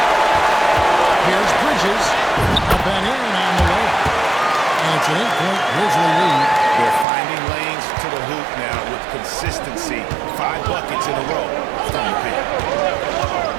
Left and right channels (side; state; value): left; drops out; at 7.1 s